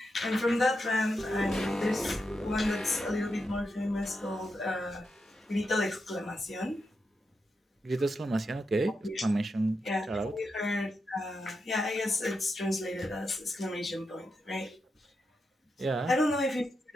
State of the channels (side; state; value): both; normal; correlation 0.86